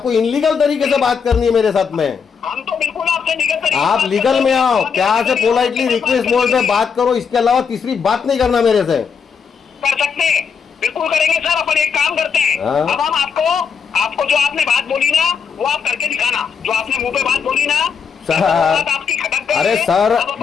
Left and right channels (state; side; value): quieter; right; 6.3 dB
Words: इनलीगल तरीके से बात करनी है मेरे साथ में। हम तो बिल्कुल आपसे आपसे लीगल तरीके से आप बात लीगल करो। में आओ, आप प्यार से लीगल पोलाइटली तरीके से रिक्वेस्ट बात मोड में करेंगे। बात करो, इसके अलावा तीसरी बात नहीं करना मेरे से। कर सकते हैं, बिल्कुल करेंगे सर। अपन एक काम करते हैं, हाँ। अब हम आपको जो आपने बात बोली ना वो आप करके दिखाना। जो आपने मुंह पे बात बोली ना सर, वो बात आपकी खटक गई अरे है। सर अब अपन